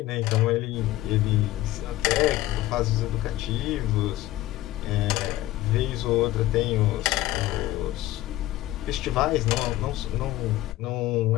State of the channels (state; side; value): quieter; right; 16.1 dB